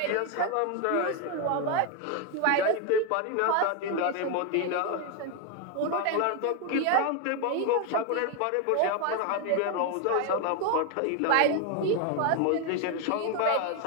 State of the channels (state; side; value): different; both; correlation 0.01